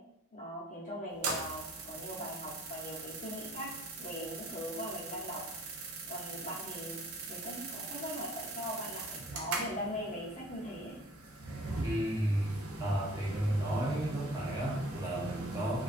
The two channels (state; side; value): normal; both; correlation 0.53